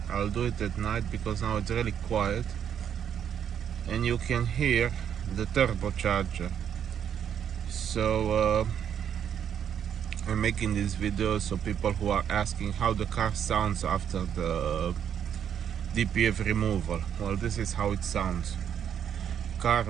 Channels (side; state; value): left; quieter; 8.8 dB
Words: I'll do it at night because now it's really quiet and you can hear the turbocharger. So I'm making this video so people who are asking how the car sounds after the DPF removal. Well, this is how it sounds. Car